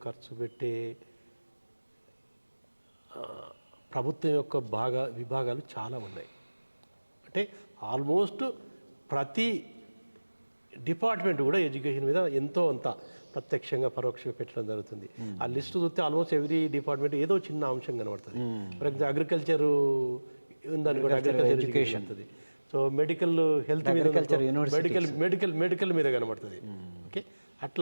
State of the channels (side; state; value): both; inverted; correlation -1.00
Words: ఖర్చు పెట్టే ప్రభుత్వం యొక్క విభాగాలు చాలా ఉన్నాయి. అంటే ఆల్మోస్ట్ ప్రతి డిపార్ట్మెంట్ కూడా ఎడ్యుకేషన్ మీద ఎంతో అంత ప్రత్యక్షంగా పరోక్షంగా పెట్టడం జరుగుతుంది. ఆ లిస్ట్ చూస్తే ఆల్మోస్ట్ ఎవ్రీ డిపార్ట్మెంట్ ఏదో చిన్న అంశం కనబడుతుంది. ఫర్ ఎగ్జాంపుల్ అగ్రికల్చర్ ఉందనుకోండి, అగ్రికల్చర్ ఎడ్యుకేషన్ ఉంటుంది. సో మెడికల్ హెల్త్ మీద, మెడికల్ మీద కనబడుతుంది. ఓకే,